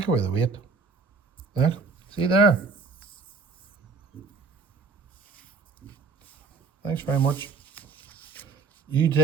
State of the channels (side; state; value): left; quieter; 4.4 dB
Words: away the weight. There, see there. Thanks very much. You